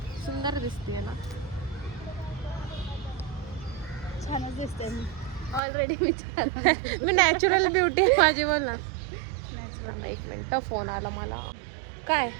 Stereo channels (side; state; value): left; drops out; at 5.6 s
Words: सुंदर दिसते ना. छानच दिसते मी ऑलरेडी मी छान मी नॅचरल ब्युटी आहे माझी, बोल ना. 1 मिनिट, फोन आला मला. काय